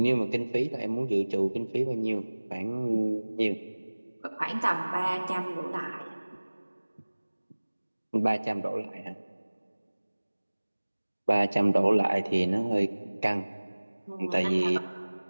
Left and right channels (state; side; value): inverted; both; correlation -1.00